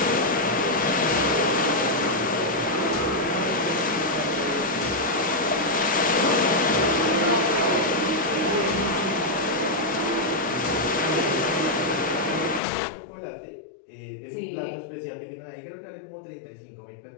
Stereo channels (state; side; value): drops out; right; at 12.6 s